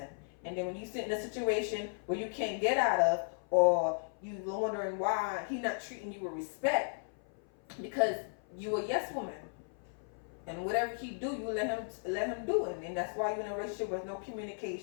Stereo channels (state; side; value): silent; right; 54 dB below the other